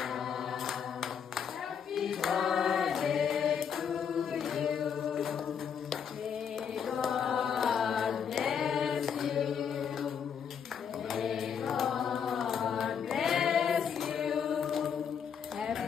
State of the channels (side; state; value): right; quieter; 7.4 dB